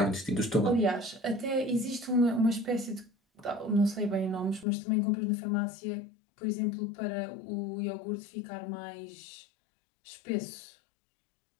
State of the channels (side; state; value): right; drops out; at 4.7 s